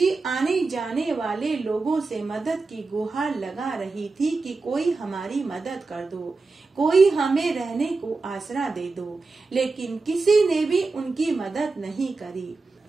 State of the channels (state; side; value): quieter; left; 3.9 dB